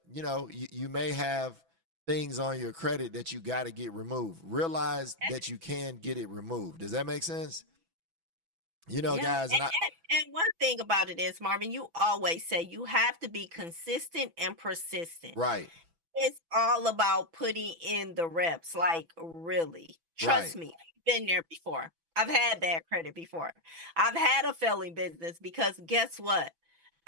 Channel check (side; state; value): left; late; 6.0 ms